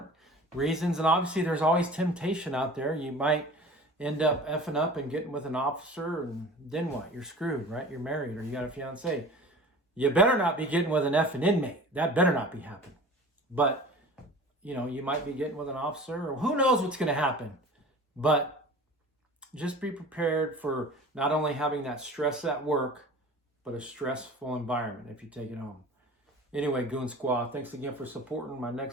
reasons, and obviously there's always temptation out there. You might end up effing up and getting with an officer, and then what? You're screwed, right? You're married or you got a fiance. You better not be getting with an effing inmate. That better not be happening. But, you know, you might be getting with an officer, or who knows what's going to happen. But just be prepared for not only having that stress at work, but a stressful environment if you take it home. Anyway, Goon Squad, thanks again for supporting. My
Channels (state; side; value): normal; both; correlation 0.40